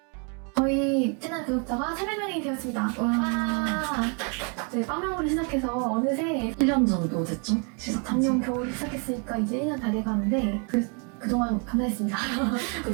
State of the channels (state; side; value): quieter; left; 37.1 dB